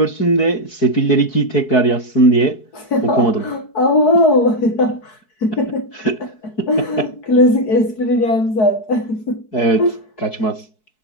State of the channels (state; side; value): late; right; 4.6 ms